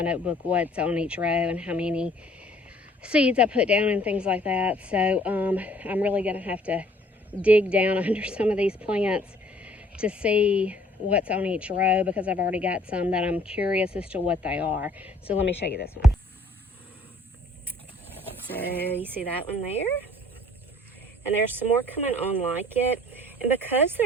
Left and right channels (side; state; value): both; normal; correlation 0.57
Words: notebook what's on each row and how many seeds I put down and things like that. So I'm really gonna have to dig down under some of these plants to see what's on each row, because I've already got some that I'm curious as to what they are. So let me show you this one. So you see that one there? And there's some more coming on like it. And because